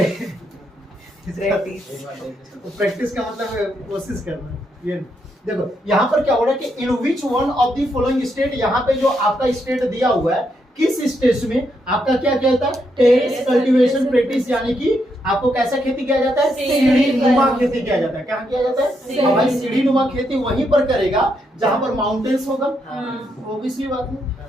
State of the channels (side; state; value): both; normal; correlation 0.79